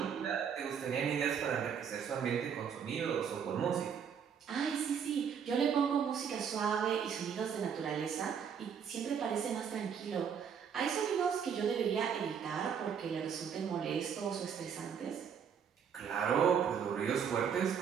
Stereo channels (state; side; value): quieter; left; 7.4 dB